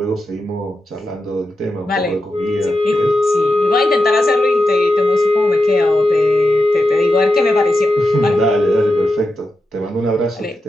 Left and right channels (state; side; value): normal; both; correlation 0.89